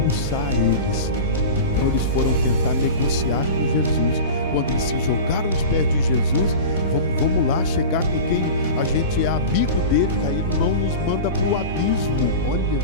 eles. Então eles foram tentar negociar com Jesus. Quando eles se jogaram nos pés de Jesus, vamos lá chegar com quem a gente é amigo dele, que aí não nos manda para o abismo. Olha,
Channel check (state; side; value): inverted; both; correlation -0.30